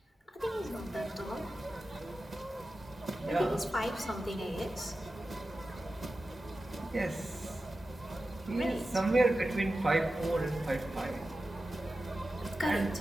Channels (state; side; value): normal; both; correlation 0.93